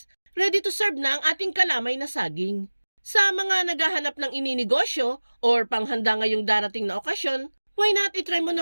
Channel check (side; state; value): both; inverted; correlation -1.00